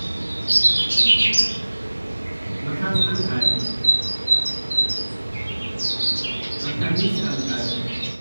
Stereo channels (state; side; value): inverted; both; correlation -1.00